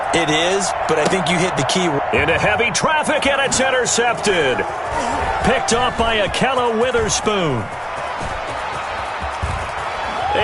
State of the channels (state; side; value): identical; both; correlation 1.00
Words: It is, but I think you hit the key. Into heavy traffic, and it's intercepted. Picked off by Akella Witherspoon.